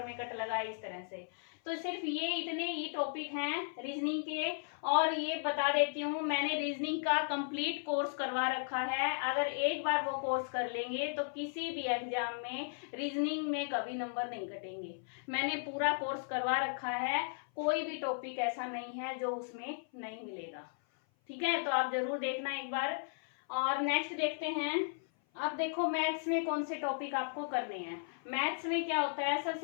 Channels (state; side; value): silent; right; 54 dB below the other